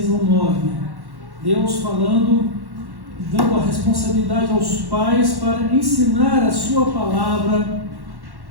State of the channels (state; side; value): late; left; 1.1 ms